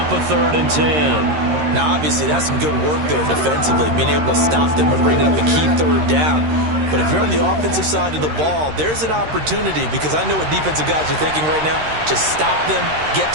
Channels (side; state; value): left; late; 13 ms